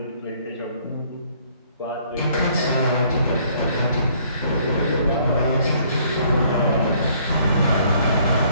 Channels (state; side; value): inverted; both; correlation -0.63